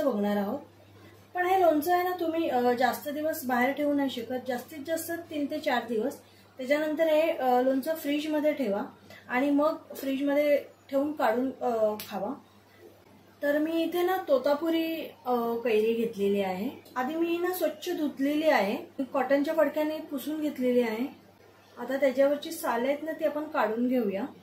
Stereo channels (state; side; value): identical; both; correlation 1.00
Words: बघणार आहोत। पण हे लोणचं आहे ना तुम्ही जास्त दिवस बाहेर ठेवू नाही शकत, जास्तीत जास्त 3 ते 4 दिवस। त्याच्यानंतर हे लोणचं फ्रीजमध्ये ठेवा आणि मग फ्रीजमध्ये ठेवून काढून खावा। तर मी इथे ना तोतापुरी कैरी घेतलेली आहे। आधी मी ना स्वच्छ धुतलेली आहे, कॉटनच्या फडक्याने पुसून घेतलेली आहे। आता त्याच्यावरची साल आहेत ना ती आपण काढून घेऊया।